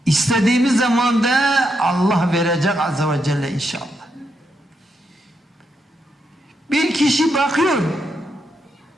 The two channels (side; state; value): both; normal; correlation 0.81